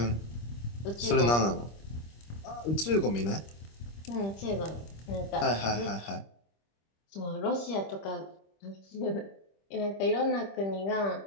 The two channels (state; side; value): late; right; 25 ms